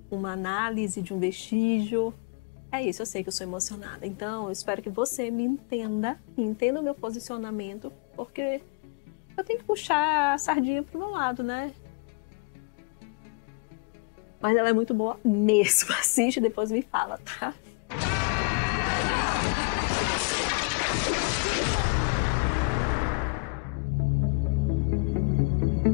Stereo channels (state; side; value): quieter; right; 32.7 dB